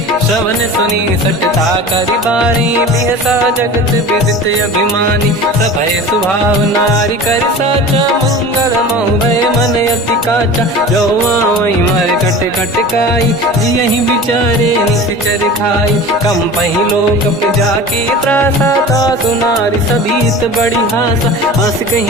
श्रवण सुनी सटता करि बारी बिहसा जगत विदित अभिमानी सभय स्वभाव नारी कर साचा मंगल मऊ भय मन अति काचा जो आवई मर कट कट काई जियहि विचारे निश्चर खाई कम पही लोक जाकी त्रासा तासु नारी सभीत बड़ी हासा, हंस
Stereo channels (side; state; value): both; normal; correlation 0.36